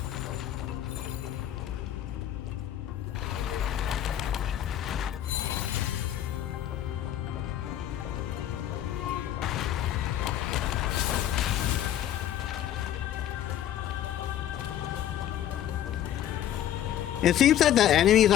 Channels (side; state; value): right; quieter; 11.4 dB